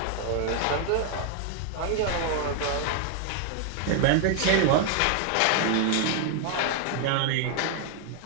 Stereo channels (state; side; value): different; both; correlation 0.00